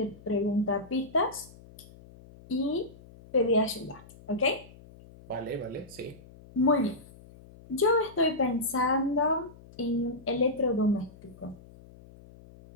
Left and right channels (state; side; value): noise; left; hum, 21 dB below the sound